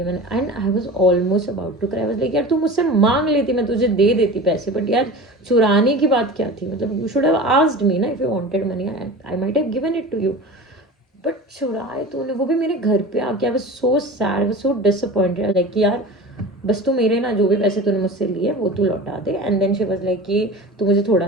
मैंने, and I was almost about to cry. Was like यार तू मुझसे मांग लेती, मैं तुझे दे देती पैसे, बट यार चुराने की बात क्या थी, मतलब you should have asked me ना if you wanted money, I might have given it to you, but चुराए तूने, वो भी मेरे घर पे आके। I was so sad, I was so disappointed, like कि यार बस तू मेरे ना जो भी पैसे तूने मुझसे लिए वो तू लौटा दे। And then she was like कि तू मुझे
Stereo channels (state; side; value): normal; both; correlation 0.34